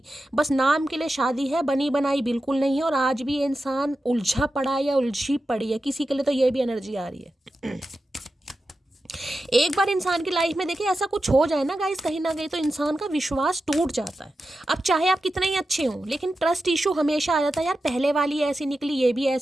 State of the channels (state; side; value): normal; both; correlation 0.91